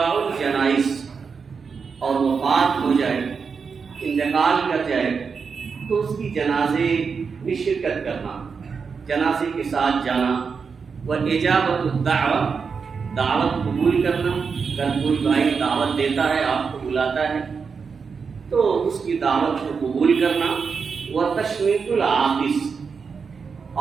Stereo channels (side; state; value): left; quieter; 5.6 dB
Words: الجنائز، اور وفات ہو جائے، انتقال کر جائے تو اس کی جنازے میں شرکت کرنا، جنازے کے ساتھ جانا، واجابت الدعوہ، دعوت قبول کرنا، اگر کوئی بھائی دعوت دیتا ہے، آپ کو بلاتا ہے تو اس کی دعوت کو قبول کرنا، وتشمیت العاطس،